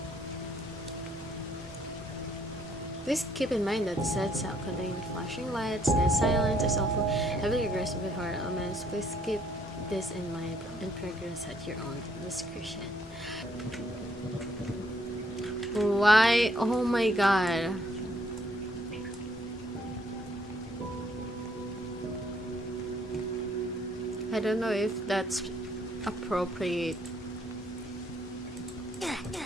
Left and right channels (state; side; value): normal; both; correlation 0.68